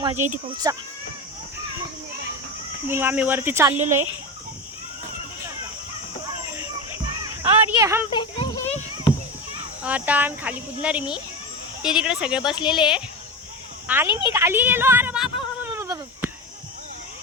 येते पाऊसचा. मग आम्ही वरती चाललेलो आहे. और ये हम पे आता आम्ही खाली कुदणार आहे. मी ते तिकडे सगळे बसलेले आहे आणि मी खाली गेलो. अरे बाबा,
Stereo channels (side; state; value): both; normal; correlation 0.22